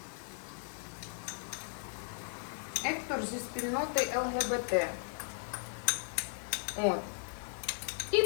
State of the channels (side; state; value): right; silent; digital silence